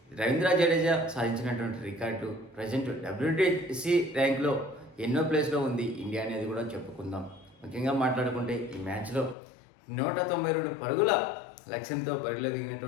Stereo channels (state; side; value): drops out; right; at 9.3 s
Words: రవీంద్ర జడేజా సాధించినటువంటి రికార్డు ప్రజెంట్ WTC ర్యాంక్లో ఎన్నో ప్లేస్లో ఉంది ఇండియా అనేది కూడా చెప్పుకుందాం. ముఖ్యంగా మాట్లాడుకుంటే ఈ మ్యాచ్లో 192 పరుగుల లక్ష్యంతో బరిలో